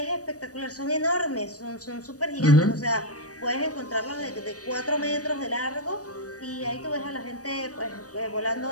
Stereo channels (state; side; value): late; right; 0.66 ms